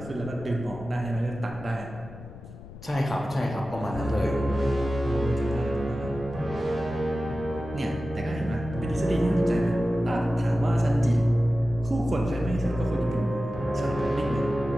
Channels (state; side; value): noise; left; rumble, 16 dB below the sound